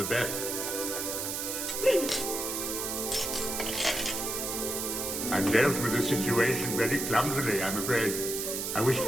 best. I dealt with the situation very clumsily, I'm afraid. I wish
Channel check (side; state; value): right; noise; hiss, 3 dB below the sound